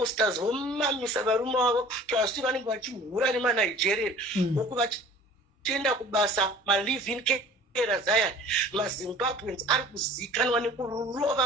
vomamisa varume vavo zvazviti vanenge vachihura nemanigeria uku tienda kubasa ma-live-in carers aya maZimbabweans ari kuzikanwa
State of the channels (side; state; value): both; normal; correlation 0.46